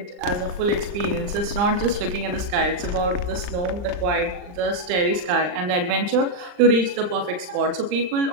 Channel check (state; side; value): late; left; 39 ms